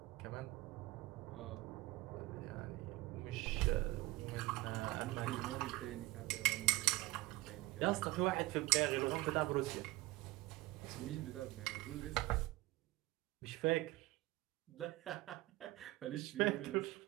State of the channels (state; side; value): quieter; left; 19.3 dB